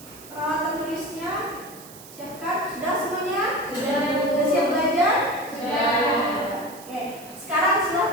Peralatan tulisnya siapkan. Sudah semuanya? Sudah, Bu. Sudah siap belajar? Sudah. Oke, sekarang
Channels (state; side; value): noise; right; hiss, 18 dB below the sound